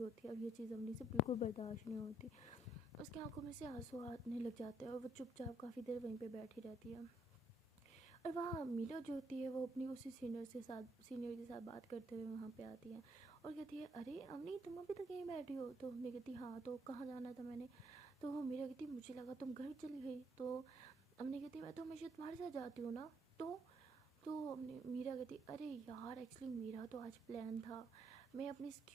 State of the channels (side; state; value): both; normal; correlation 0.72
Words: होती है और ये चीज़ अमनी से बिल्कुल बर्दाश्त नहीं होती। उसकी आंखों में से आंसू आने लग जाते हैं और वो चुपचाप काफ़ी देर वहीं पे बैठी रहती है। और वहाँ मीरा जो होती है वो अपनी उसी सीनियर के साथ बात करते हुए वहाँ पे आती है और कहती है अरे अमनी तुम अभी तक यहीं बैठी हो। तो हमने कहती हाँ तो कहाँ जाना था मैंने। तो वो मीरा कहती मुझे लगा तुम घर चली गई। तो हमने कहती मैं तो हमेशा तुम्हारे साथ जाती हूँ ना। तो हमने मीरा कहती अरे यार एक्चुअली मेरा तो आज प्लान था, मैं अपनी